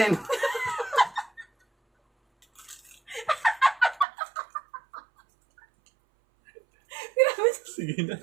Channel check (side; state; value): left; drops out; at 4.0 s